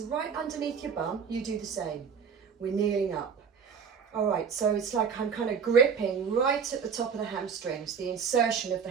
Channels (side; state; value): left; quieter; 6.5 dB